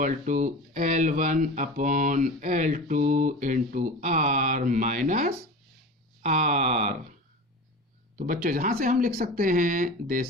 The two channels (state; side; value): normal; both; correlation 0.32